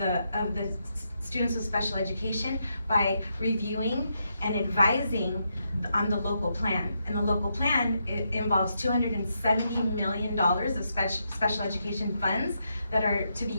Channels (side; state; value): both; inverted; correlation -0.81